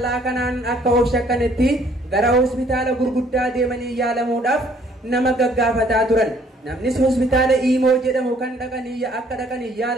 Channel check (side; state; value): both; normal; correlation 0.61